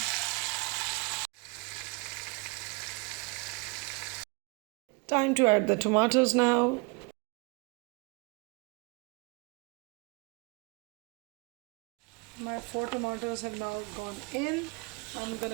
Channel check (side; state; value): left; quieter; 29.6 dB